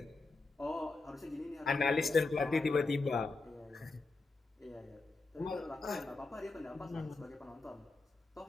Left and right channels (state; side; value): quieter; right; 3.6 dB